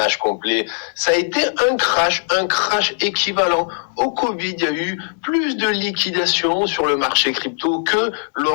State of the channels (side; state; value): right; silent; digital silence